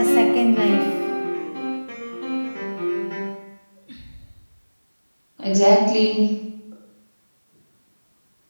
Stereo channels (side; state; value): both; inverted; correlation -1.00